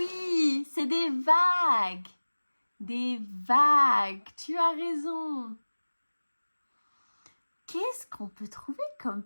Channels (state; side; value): inverted; both; correlation -1.00